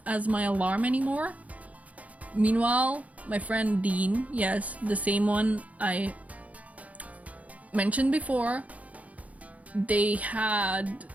as my alarm anymore. Meanwhile, my friend Dean, yes, the same one I mentioned before, they had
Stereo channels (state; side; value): late; left; 0.070 ms